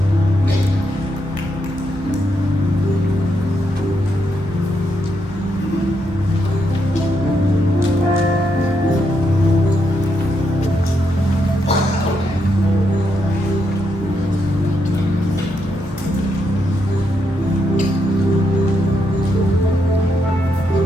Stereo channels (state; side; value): normal; both; correlation 0.80